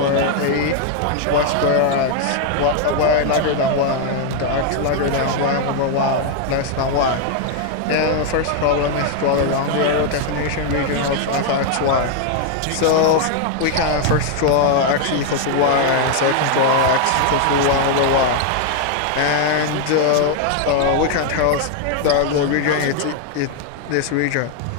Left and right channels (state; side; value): different; both; correlation 0.00